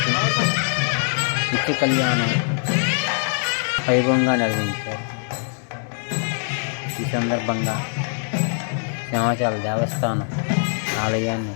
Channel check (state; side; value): silent; right; digital silence